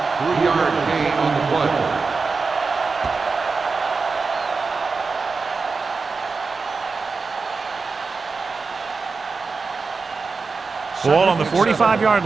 gain on the play. Ball on the 45-yard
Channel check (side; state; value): left; quieter; 4.5 dB